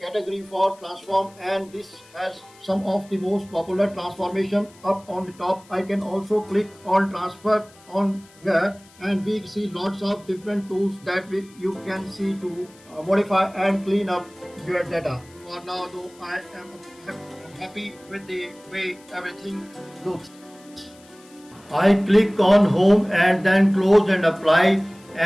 category for transform and this has some of the most popular transformation up on the top. I can also click on transfer on here and we see lots of different tools that you can see to modify and clean up your data. For now though I am happy with the way everything looks. I click on home and then close and apply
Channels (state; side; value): noise; left; hiss, 26 dB below the sound